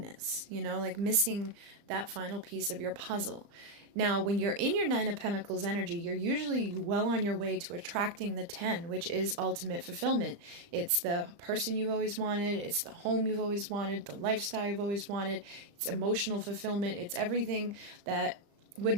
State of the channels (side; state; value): left; late; 35 ms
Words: you know, like missing that final piece of your puzzle. Now, when you're in your 9 of Pentacles energy, you're usually well on your way to attracting the 10, which is ultimate fulfillment. It's the person you've always wanted, it's the home you've always wanted, the lifestyle you've always wanted, it's emotional fulfillment, it's everything that would